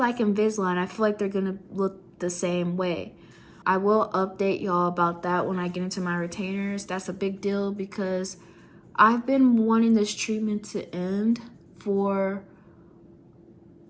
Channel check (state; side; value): identical; both; correlation 1.00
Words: Invisalign. I feel like they're gonna look the same way. I will update y'all about that when I get into my retainers. That's a big deal because I've been wanting this treatment to end for